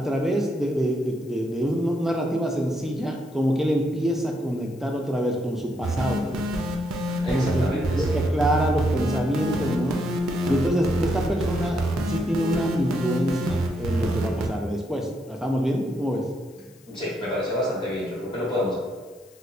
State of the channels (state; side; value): noise; left; hiss, 28 dB below the sound